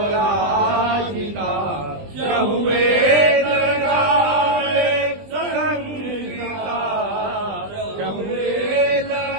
चहुवेद गावे संगीता चहुवेद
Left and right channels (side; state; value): left; late; 20 ms